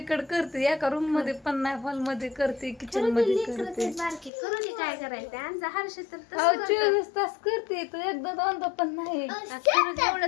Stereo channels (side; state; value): right; drops out; at 4.3 s